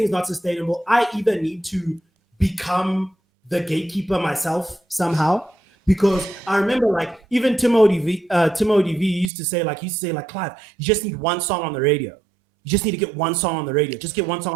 not sustainable. I either need to become the gatekeeper myself somehow. Because I remember, like, even Timothy V used to say, Clive, you just need one song on the radio. You just need to get one song on the radio. Just get one song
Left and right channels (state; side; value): drops out; left; at 9.3 s